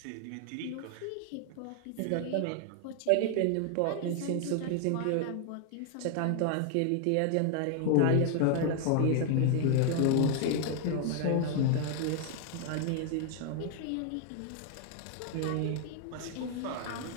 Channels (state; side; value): different; both; correlation 0.00